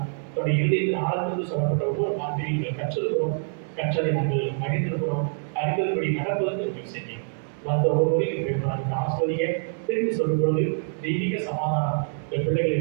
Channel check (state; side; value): silent; left; digital silence